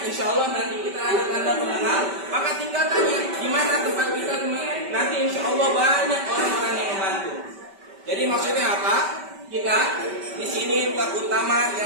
insya Allah nanti kita ada tanda pengenal, maka tinggal tanya gimana tempat kita, nanti insya Allah banyak orang-orang yang membantu. Jadi maksudnya apa? Kita di sini terutama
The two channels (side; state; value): left; late; 5.2 ms